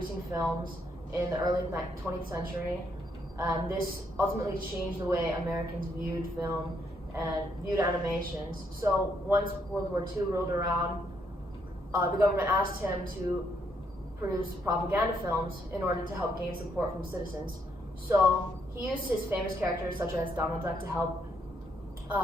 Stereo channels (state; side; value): normal; both; correlation 0.74